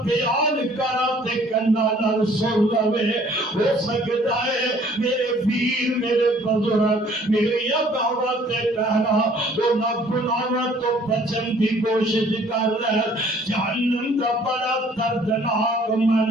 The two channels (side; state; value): both; normal; correlation 0.58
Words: بیان کرا تے کنا نال سن لوے ہو سکتا ہے میرے پیر میرے بزرگ میری دعوت کہنا تو نہ گناہاں تو بچن کی کوشش کر لے جہنم کا بڑا دردناک